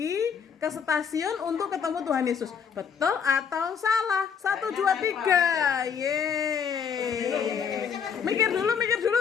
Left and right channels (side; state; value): right; quieter; 7.0 dB